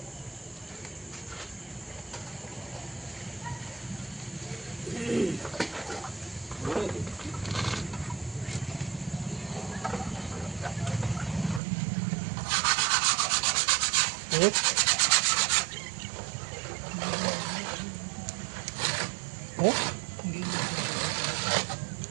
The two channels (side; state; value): left; drops out; at 11.6 s